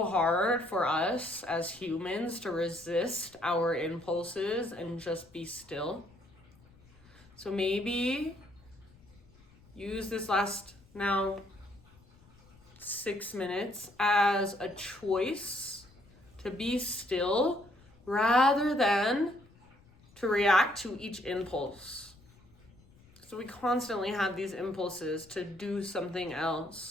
hard for us as humans to resist our impulses and just be still. So maybe use this last now 6 minutes as a choice to be still rather than to react to each impulse. So we constantly have these impulses to do something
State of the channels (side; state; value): left; noise; rumble, 27 dB below the sound